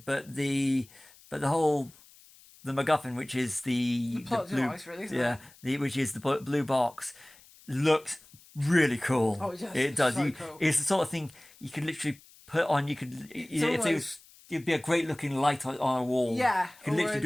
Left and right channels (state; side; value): noise; left; hiss, 25 dB below the sound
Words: but the MacGuffin, which is the plot blue, device, really, isn't it? which is the blue box, looks really cool. Oh, it does. It does. So cool. It's the sort of thing you could literally put on. It'd be a great looking light on a wall. Yeah. You could literally